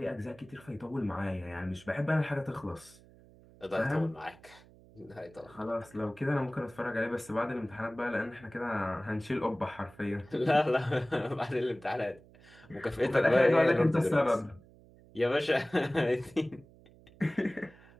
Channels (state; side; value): noise; right; hum, 24 dB below the sound